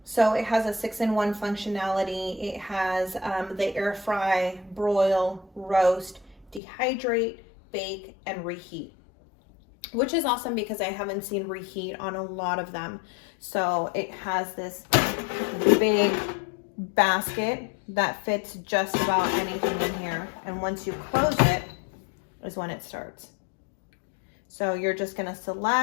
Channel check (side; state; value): right; drops out; at 6.6 s